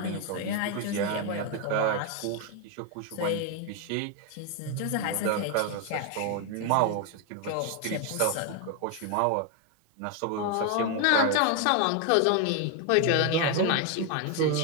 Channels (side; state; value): both; different; correlation 0.01